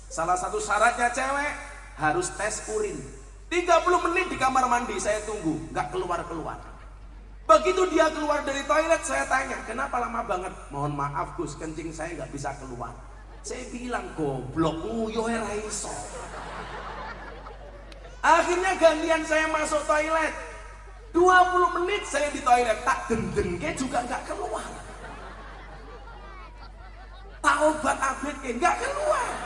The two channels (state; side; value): identical; both; correlation 1.00